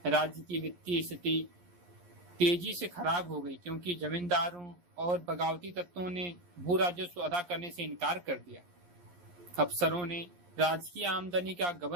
राज्य की वित्तीय स्थिति तेजी से खराब हो गई, क्योंकि जमींदारों और बगावती तत्वों ने भू राजस्व अदा करने से इनकार कर दिया। अफसरों ने राजकीय आमदनी का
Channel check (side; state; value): left; late; 11 ms